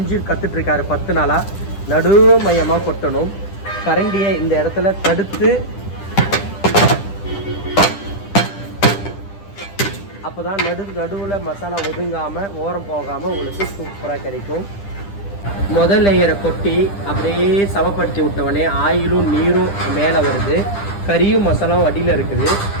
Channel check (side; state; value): right; late; 10 ms